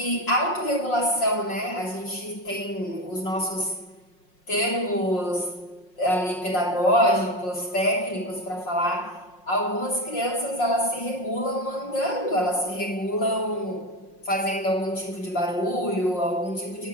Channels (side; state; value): right; late; 5.5 ms